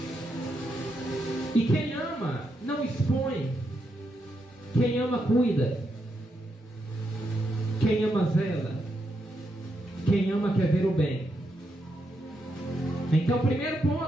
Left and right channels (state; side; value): normal; both; correlation 0.82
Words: E quem ama não expõe. Quem ama cuida. Quem ama zela. Quem ama quer ver o bem. Então, primeiro